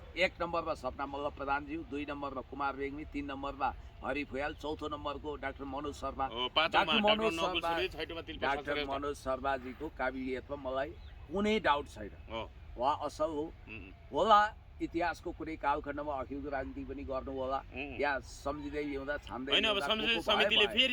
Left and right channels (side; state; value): both; identical; correlation 1.00